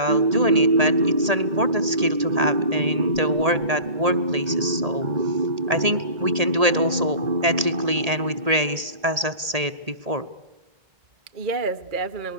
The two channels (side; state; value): left; late; 1.8 ms